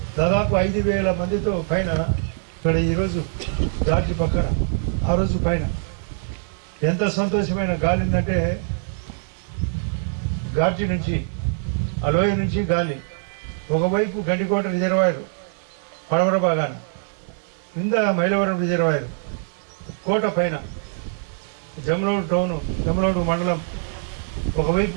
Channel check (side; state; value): left; silent; 58 dB below the other